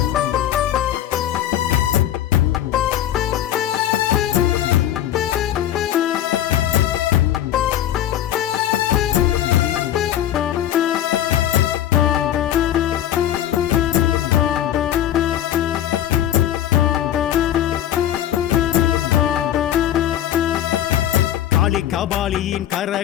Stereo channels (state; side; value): quieter; right; 11.6 dB